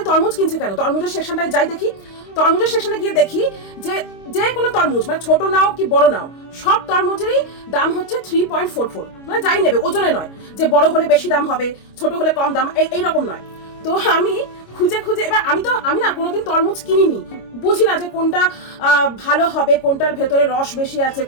তরমুজ কিনছে কেন, তরমুজের সেকশনটায় যাই দেখি। তরমুজের সেকশনে গিয়ে দেখি যে যে কোনো তরমুজ, মানে ছোট নাও কি বড় নাও, সব তরমুজেরই দাম হচ্ছে 3.44। মানে যাই নেবে ওজনে নয়, যে বড় হলে বেশি দাম হবে, ছোট হলে কম দাম, এইরকম নয়। তো আমি খুঁজে এবার আমি না কোনোদিন তরমুজ কিনিনি, বুঝি না যে কোনটা ভালো হবে, কোনটার ভেতরে রস বেশি আছে,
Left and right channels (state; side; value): late; right; 25 ms